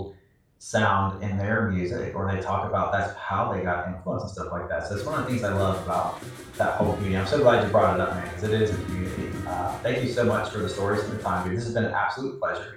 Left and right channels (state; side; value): identical; both; correlation 1.00